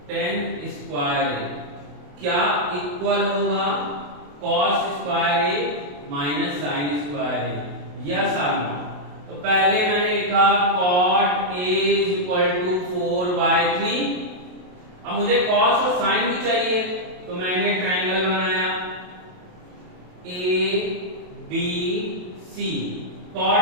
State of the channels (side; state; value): left; late; 28 ms